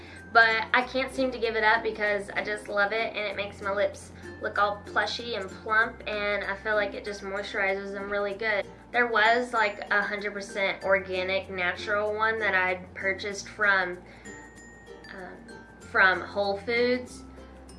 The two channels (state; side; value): identical; both; correlation 1.00